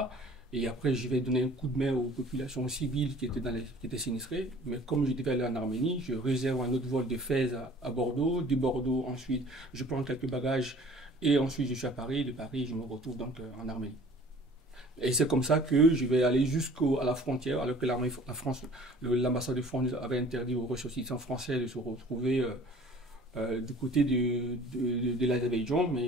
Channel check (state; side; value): normal; both; correlation 0.49